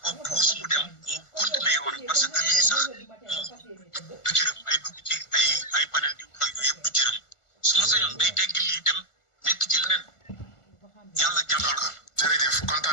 ko puus mu dem mu continuer yoon parce que lii sax moom du jërëm ay dugg ci ay panel di wax ak yooyu yëpp du jërëm su ma sañoon day tegg lii dem nekk ci leneen yàlla jàppal ko. jërëjëf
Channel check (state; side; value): late; right; 1.4 ms